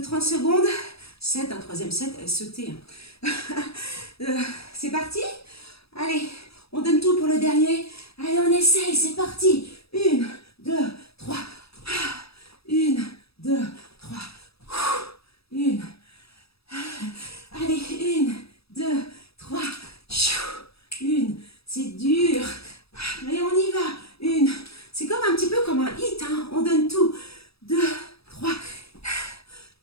secondes. Un troisième set, sauter. C'est parti. Allez, on donne tout pour le dernier. Allez, on essaye, c'est parti. 1, 2, 3. 1, 2, 3. 1. Allez, 1, 2, 3. 1. C'est dur. Mais on y va. 1. C'est comme un petit peu comme un hit. Hein. On donne tout. 2, 3.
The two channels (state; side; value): late; right; 0.77 ms